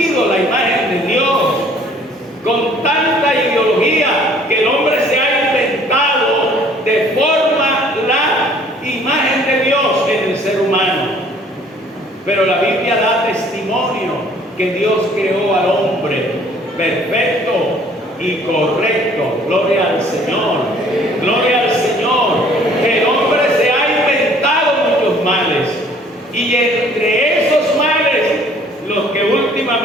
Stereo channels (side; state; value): both; normal; correlation 0.56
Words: la imagen de Dios con tanta ideología que el hombre se ha inventado de forma la imagen de Dios en el ser humano. Pero la Biblia da testimonio que Dios creó al hombre perfecto y correcto. Gloria al Señor. Gloria al Señor. Que el hombre se ha inventado muchos males. Y entre esos males, los que